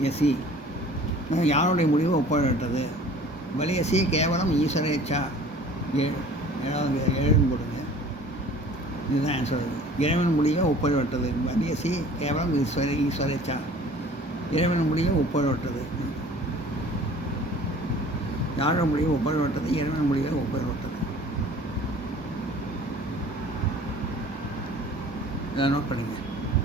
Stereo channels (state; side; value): normal; both; correlation 0.47